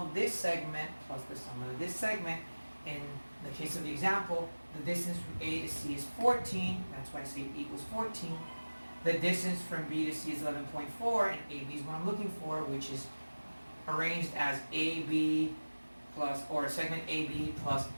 of this segment plus the sum of this segment. In the case of the example, the distance from A to C is 14, that's why I say it equals 14. The distance from B to C is 11.4, and AB is what I'm looking for, which is arranged as AB plus, or segment AB plus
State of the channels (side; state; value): both; inverted; correlation -1.00